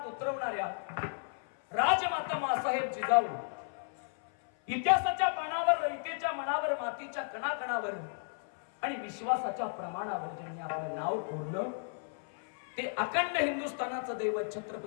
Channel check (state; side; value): silent; right; 55 dB below the other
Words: उतरवणाऱ्या राजमाता मासाहेब जिजाऊ इतिहासाच्या पानावर, रयतेच्या मनावर, मातीच्या कणाकणावर आणि विश्वासाच्या प्रमाणावर ज्यांनी आपलं नाव कोरलं ते अखंड हिंदुस्थानाचं दैवत